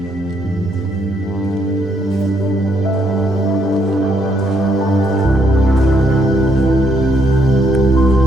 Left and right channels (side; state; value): both; normal; correlation 0.73